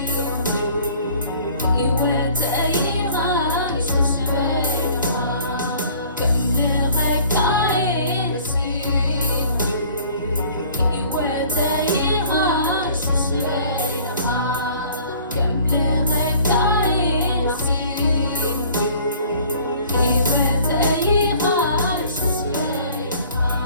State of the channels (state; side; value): inverted; both; correlation -0.52